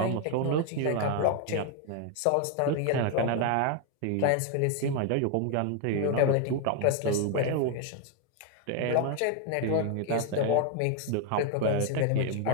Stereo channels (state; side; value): different; both; correlation 0.01